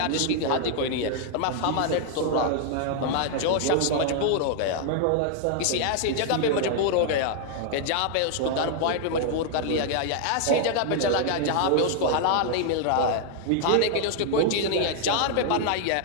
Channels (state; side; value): different; both; correlation 0.00